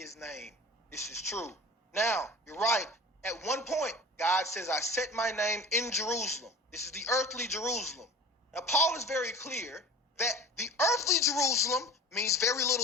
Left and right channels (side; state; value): both; normal; correlation 0.39